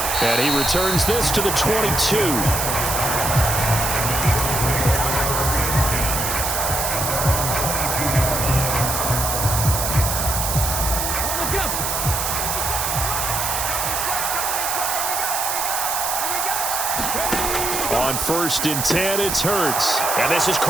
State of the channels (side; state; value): right; noise; hiss, 1 dB below the sound